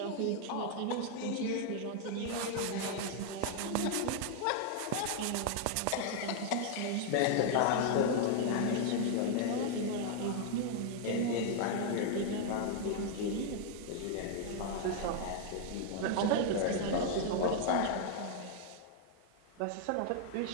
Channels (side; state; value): both; different; correlation 0.00